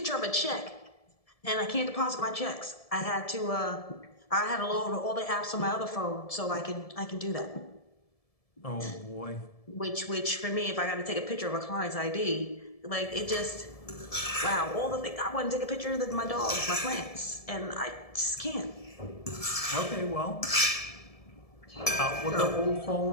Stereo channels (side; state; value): right; late; 1.7 ms